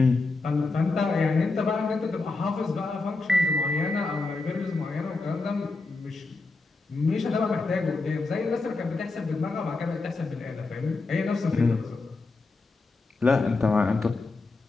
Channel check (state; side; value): quieter; right; 3.6 dB